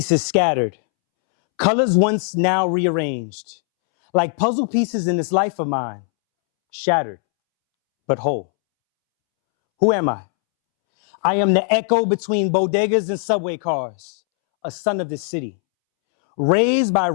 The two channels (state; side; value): silent; right; 66 dB below the other